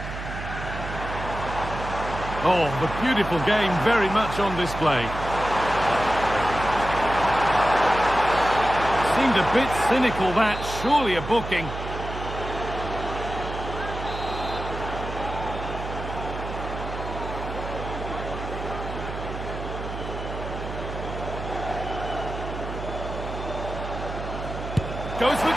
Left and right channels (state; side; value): noise; right; hum, 7 dB below the sound